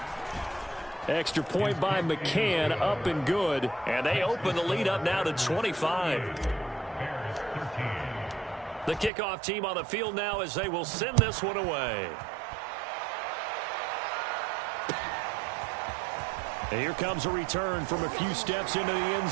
Extra point by McCann, up and good. And they open the lead up now to 25. The kickoff team on the field now as they will send this one away. And here comes a return from a few steps into the end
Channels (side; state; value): left; drops out; at 9.1 s